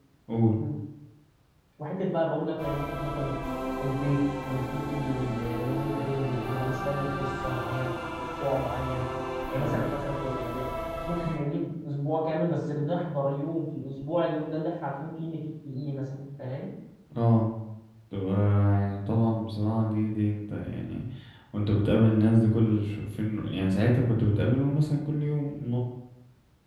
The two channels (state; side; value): identical; both; correlation 1.00